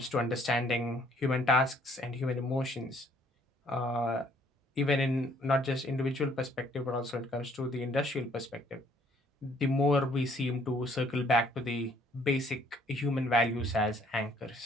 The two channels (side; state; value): both; normal; correlation 0.62